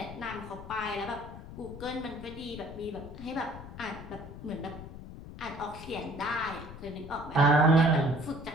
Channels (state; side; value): noise; left; rumble, 13 dB below the sound